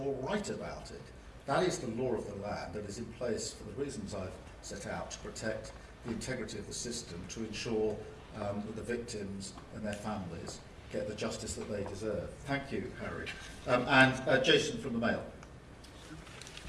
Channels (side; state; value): both; identical; correlation 1.00